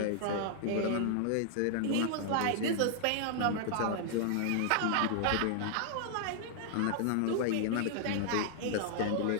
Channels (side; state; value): both; different; correlation -0.01